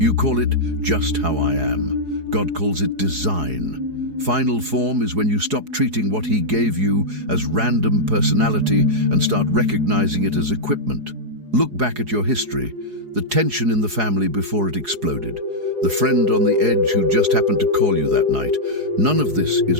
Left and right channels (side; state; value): left; late; 4.8 ms